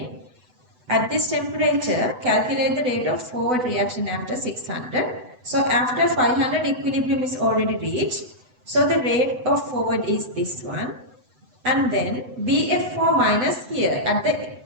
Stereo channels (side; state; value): left; late; 8.0 ms